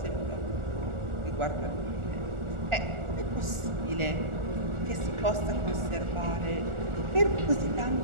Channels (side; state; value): left; late; 1.4 ms